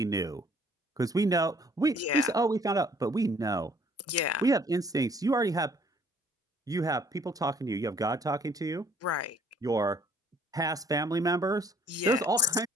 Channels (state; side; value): normal; both; correlation 0.60